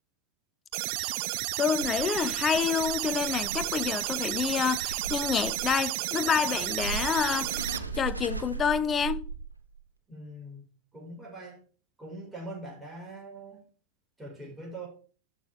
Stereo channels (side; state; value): both; normal; correlation 0.42